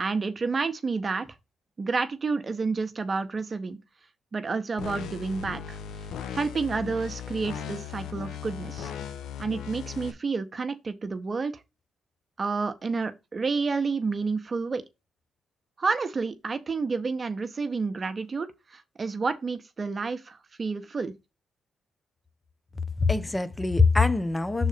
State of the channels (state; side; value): normal; both; correlation 0.86